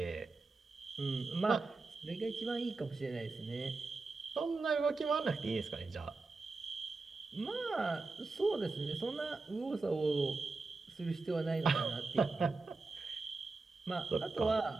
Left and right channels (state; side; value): quieter; left; 3.7 dB